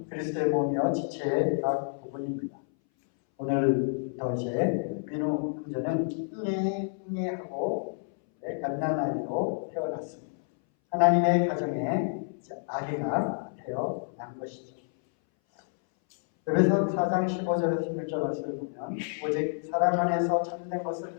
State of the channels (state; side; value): silent; right; 58 dB below the other